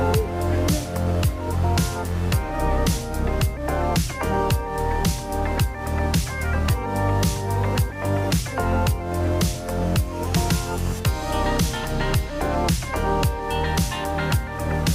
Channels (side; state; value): both; identical; correlation 1.00